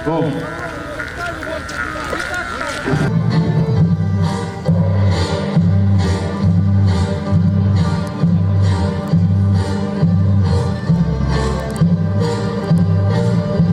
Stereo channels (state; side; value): identical; both; correlation 1.00